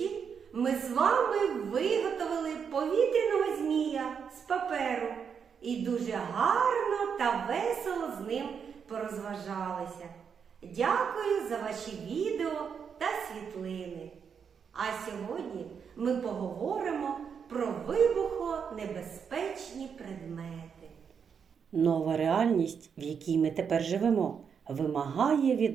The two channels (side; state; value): left; quieter; 6.8 dB